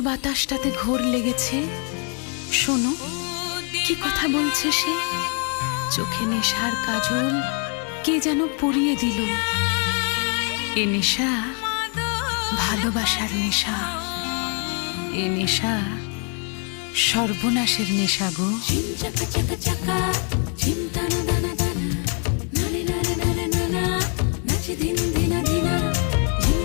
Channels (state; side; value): quieter; right; 39.1 dB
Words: বাতাসটাতে ঘোর লেগেছে, শোনো কি কথা বলছে সে। চোখে নেশার কাজল কে যেন পরিয়ে দিল। এ নেশা ভালোবাসার নেশা, এ নেশা সর্বনাশের নেশা গো। ঝিম চাকা চাকা চাকা ঝিম টানা দানা দানা নারে নারে নারে নানা নাচে দিন দিনা দিনা ঝিম